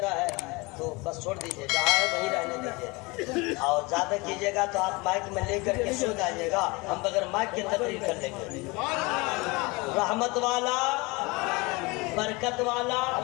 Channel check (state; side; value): quieter; right; 25.3 dB